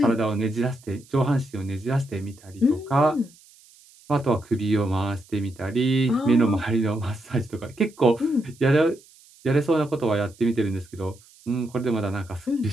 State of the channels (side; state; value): right; noise; hiss, 26 dB below the sound